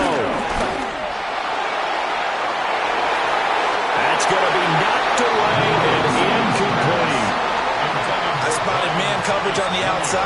That's going to be knocked away and incomplete. I spotted man coverage on the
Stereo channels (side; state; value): both; identical; correlation 1.00